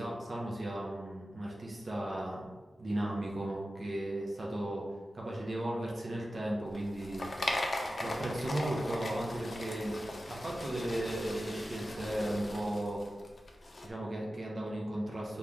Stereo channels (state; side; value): normal; both; correlation 0.94